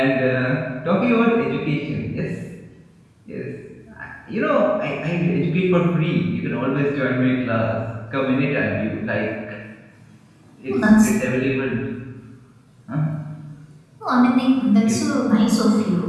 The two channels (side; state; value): both; identical; correlation 1.00